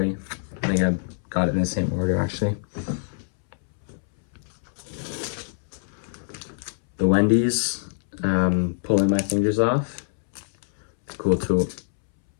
I think I got it in the same order, actually. The Wendy's, Pulling My Fingers Off. Cool tool.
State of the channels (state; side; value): silent; right; 62 dB below the other